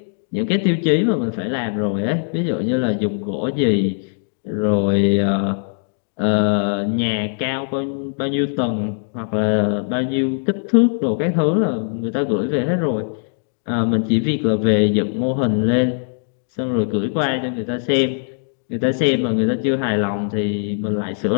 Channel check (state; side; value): silent; right; digital silence